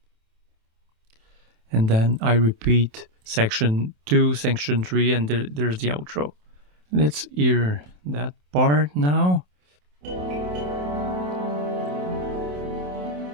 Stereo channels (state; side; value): late; left; 27 ms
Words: And then I repeat section 2, section 3, and there's the outro. Let's hear that part now.